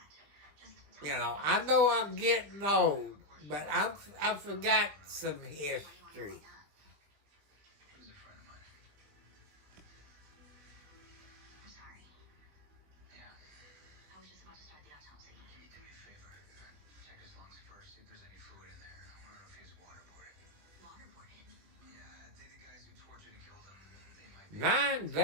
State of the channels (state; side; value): late; left; 20 ms